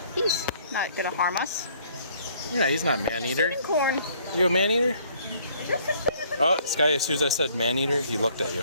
He's not gonna harm us. Yeah, he's not man-eater. Corn. You a man-eater? Oh, this guy, as soon as I said man-eater, he looked at you.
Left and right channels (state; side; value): inverted; both; correlation -0.61